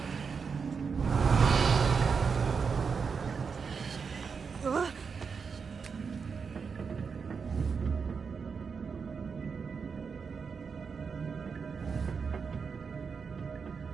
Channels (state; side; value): quieter; left; 5.6 dB